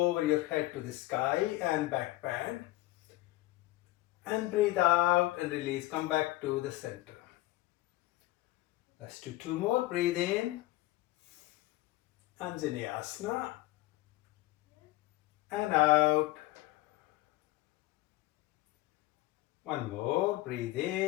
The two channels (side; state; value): right; quieter; 17.6 dB